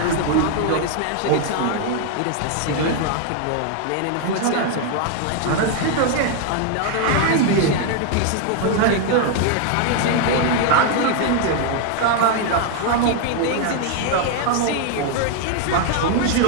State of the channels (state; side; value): different; both; correlation 0.00